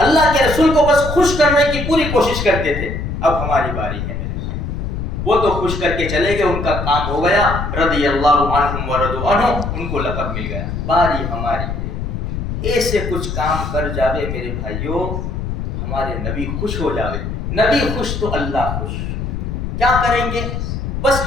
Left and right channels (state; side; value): noise; left; rumble, 4 dB below the sound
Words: اللہ کے رسول کو بس خوش کرنے کی پوری کوشش کرتے تھے۔ اب ہماری باری ہے میرے بھائی، وہ تو خوش کر کے چلے گئے، ان کا کام ہو گیا، رضی اللہ عنہم ورضوا عنہ، ان کو لقب مل گیا۔ باری ہماری ہے، ایسے کچھ کام کر جاوے میرے بھائیوں، ہمارے نبی خوش ہو جاوے، نبی خوش تو اللہ خوش۔ کیا کریں گے؟ بس